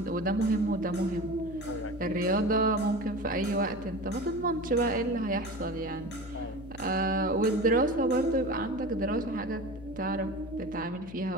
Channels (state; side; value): noise; left; hum, 16 dB below the sound